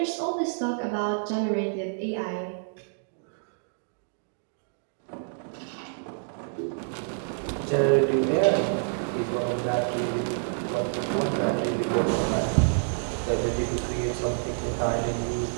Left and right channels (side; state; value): left; silent; digital silence